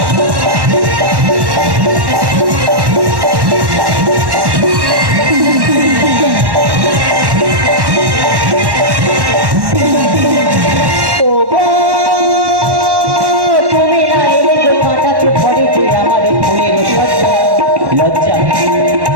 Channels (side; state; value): left; late; 1.1 ms